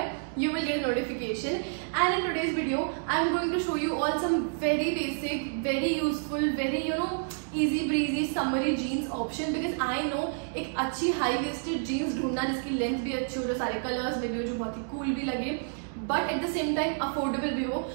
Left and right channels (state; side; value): silent; left; digital silence